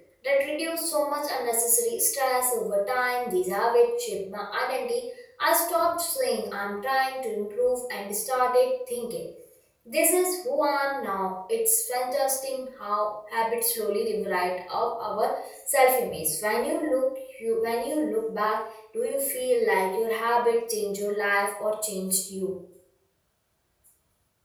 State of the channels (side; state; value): both; identical; correlation 1.00